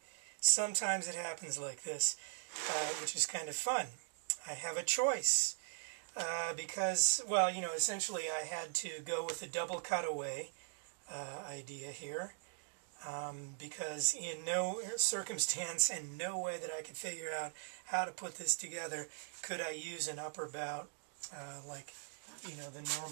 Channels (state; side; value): silent; left; digital silence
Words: Sometimes it happens like this, which is kind of fun. I have a choice. Because, well, essentially I had to go with the double cutaway idea here. Because in no circumstance and no way that I could figure out how to put this together could I use an upper bout like the